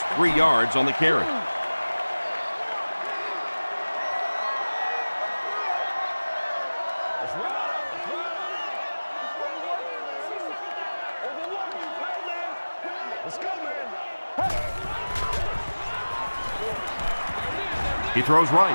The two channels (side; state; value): both; inverted; correlation -1.00